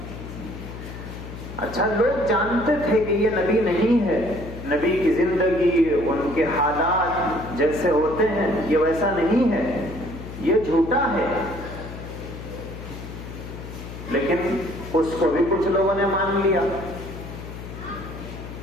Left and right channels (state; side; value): noise; left; hum, 11 dB below the sound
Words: اچھا، لوگ جانتے تھے کہ یہ نبی نہیں ہے، نبی کی زندگی، ان کے حالات جیسے ہوتے ہیں یہ ویسا نہیں ہے، یہ جھوٹا ہے، لیکن اس کو بھی کچھ لوگوں نے مان لیا،